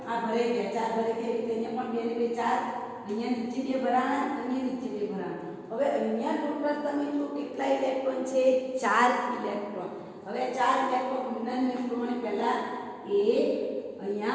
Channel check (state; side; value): identical; both; correlation 1.00